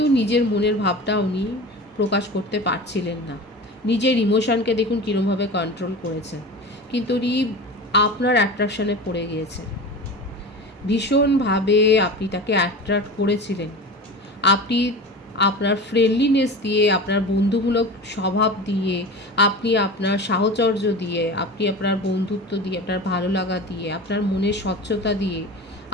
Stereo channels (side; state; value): both; normal; correlation 0.32